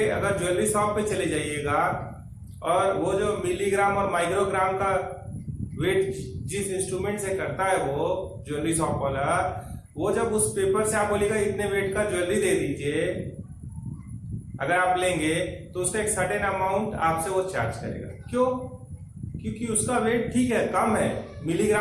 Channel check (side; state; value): both; identical; correlation 1.00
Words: अगर ज्वेलरी शॉप पे चले जाइएगा और वो जो मिलीग्राम और माइक्रोग्राम का वेट जिस इंस्ट्रूमेंट से करता है वो ज्वेलरी शॉप वाला, वो जब उस पेपर से आप बोलेगा इतने वेट का ज्वेलरी दे दीजिए, अगर आप लेंगे तो उसका एक सर्टेन अमाउंट आपसे वो चार्ज करेगा। क्यों? क्योंकि उसका वेट ठीक है, कम है,